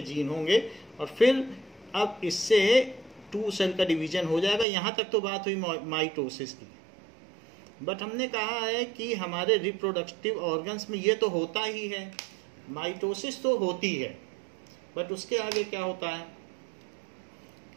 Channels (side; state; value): left; drops out; at 4.7 s